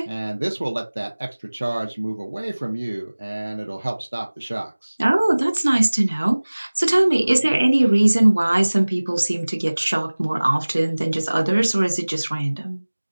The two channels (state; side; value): inverted; both; correlation -1.00